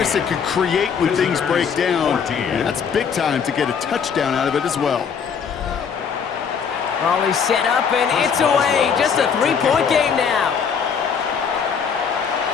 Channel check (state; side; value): quieter; right; 6.7 dB